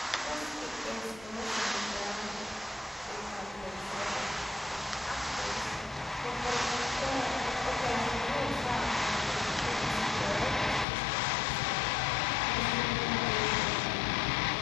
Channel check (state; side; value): drops out; right; at 10.9 s